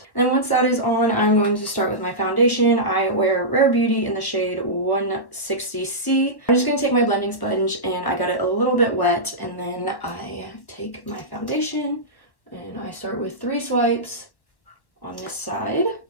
And once that is on, I'm going to start with my foundation. I wear Rare Beauty in the shade 160C. I'm just going to take my blending sponge, and I got it a little bit wet, and then I take my foundation, and I start with 3 swipes on this side.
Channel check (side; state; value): right; late; 1.2 ms